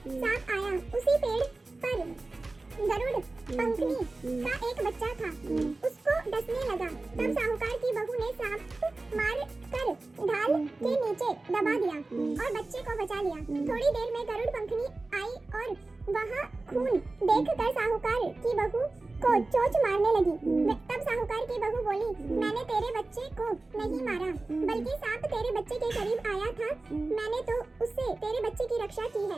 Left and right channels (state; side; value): quieter; left; 3.2 dB